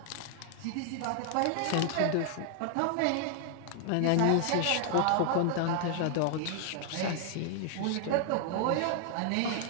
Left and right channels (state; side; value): different; both; correlation 0.00